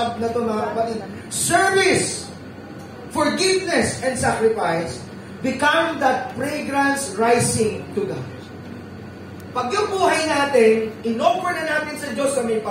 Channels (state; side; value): identical; both; correlation 1.00